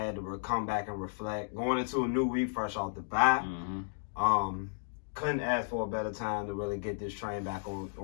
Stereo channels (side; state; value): right; silent; digital silence